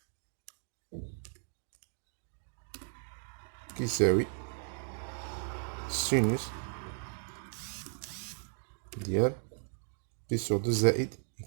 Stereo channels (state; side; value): silent; left; 54 dB below the other